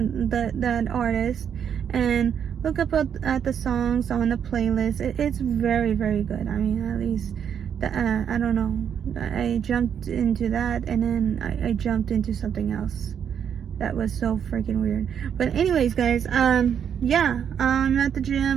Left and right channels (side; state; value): left; quieter; 8.2 dB